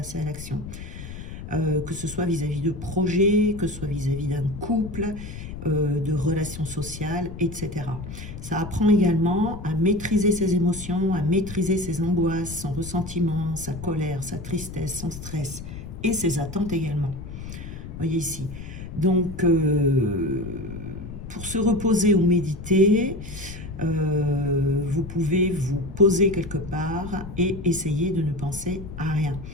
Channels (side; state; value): left; noise; rumble, 10 dB below the sound